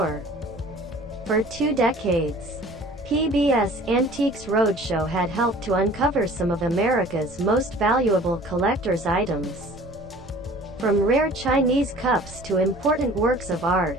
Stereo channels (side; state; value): both; normal; correlation 0.48